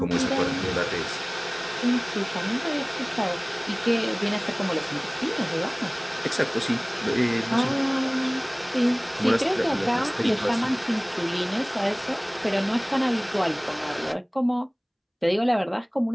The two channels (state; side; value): identical; both; correlation 1.00